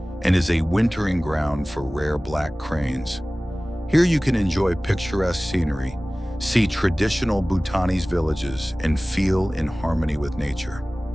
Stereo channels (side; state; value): both; normal; correlation 0.98